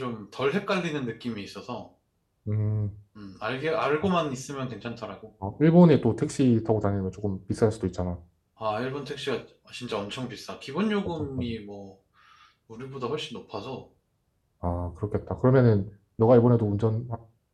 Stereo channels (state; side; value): identical; both; correlation 1.00